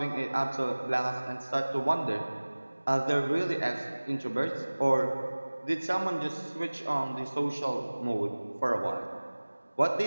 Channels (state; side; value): inverted; both; correlation -1.00